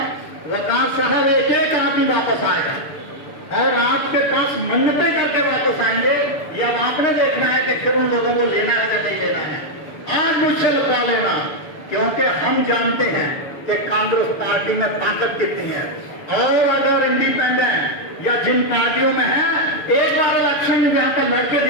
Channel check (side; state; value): right; late; 6.8 ms